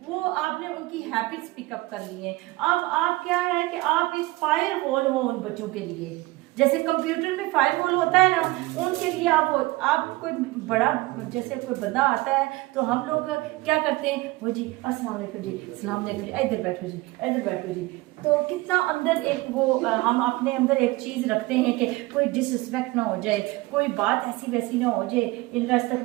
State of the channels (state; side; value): quieter; left; 20.9 dB